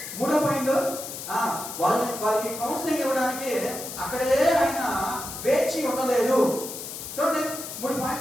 3వ పాయింట్, వాళ్ళకి కౌన్సిలింగ్ ఇవ్వడానికి అక్కడే ఆయన వేచి ఉండలేదు. చూడండి, 3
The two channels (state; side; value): noise; left; hiss, 9 dB below the sound